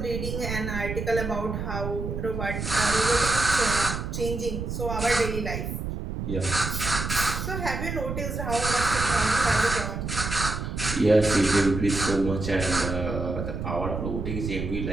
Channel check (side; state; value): right; noise; rumble, 4 dB below the sound